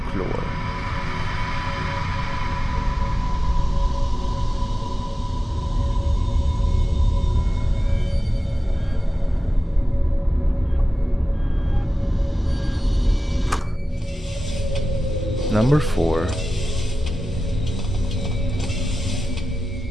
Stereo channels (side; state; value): both; normal; correlation 0.94